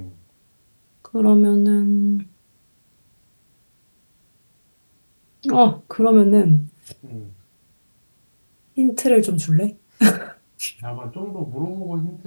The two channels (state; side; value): inverted; both; correlation -1.00